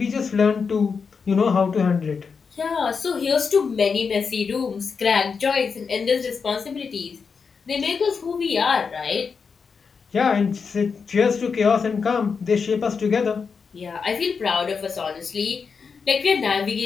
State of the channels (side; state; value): right; quieter; 5.6 dB